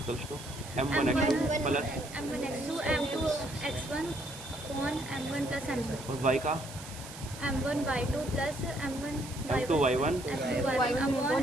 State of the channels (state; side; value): noise; right; hiss, 14 dB below the sound